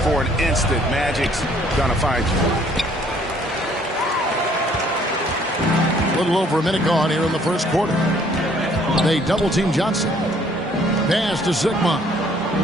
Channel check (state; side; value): normal; both; correlation 0.61